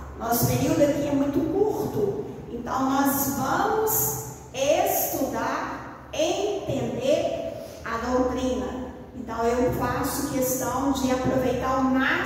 Nosso período aqui é muito curto, então nós vamos estudar, entender a doutrina. Então eu faço questão de aproveitar o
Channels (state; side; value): identical; both; correlation 1.00